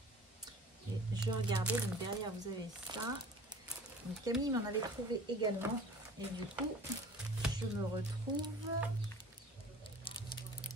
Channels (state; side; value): normal; both; correlation 0.44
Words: Et je regardais, donc derrière vous avez ça. Donc Camille m'en avait trouvé également. Et du coup, je me retrouve...